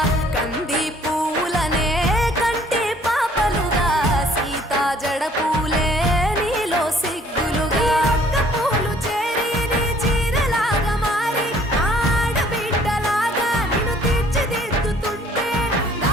కంది పువ్వులనే కంటి పాపలుగా సీతా జడ పూలే నీలో సిగ్గులుగా ఒక్క పూలు చేరి నీ చీరలాగా మారి ఆడబిడ్డలాగా నిన్ను తీర్చిదిద్దుతుంటే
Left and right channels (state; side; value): normal; both; correlation 0.58